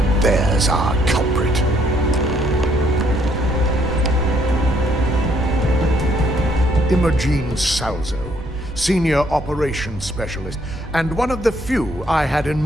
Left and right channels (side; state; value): both; normal; correlation 0.68